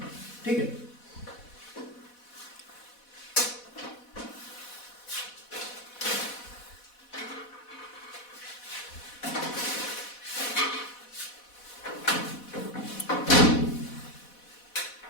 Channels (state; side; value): late; right; 4.1 ms